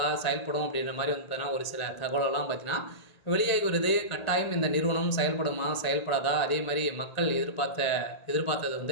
செயல்படும் அப்படின்ற மாதிரி பார்த்தீங்கன்னா ஒரு சில தகவலெல்லாம் பார்த்தீங்கன்னா வெளியாகி வருது. கட்டாயம் இந்த நிறுவனம் செயல்படுமா, செயல்படாதா, அதே மாதிரி மக்கள்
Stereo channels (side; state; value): right; late; 1.8 ms